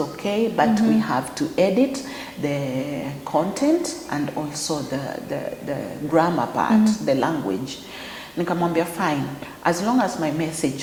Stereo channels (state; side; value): identical; both; correlation 1.00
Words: but we have to edit the content and also the grammar part, the language. Nikamwambia fine, as long as my